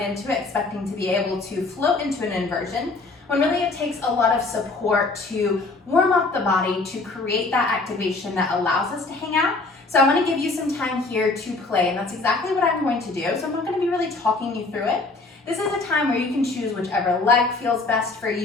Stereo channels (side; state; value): right; quieter; 3.5 dB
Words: into it expecting to be able to float into an inversion, when really it takes a lot of support to warm up the body to create that activation that allows us to hang out. So I want to give you some time here to play, and that's exactly what I'm going to do. So I'm not going to be really talking you through it. This is a time where you can choose whichever leg feels best for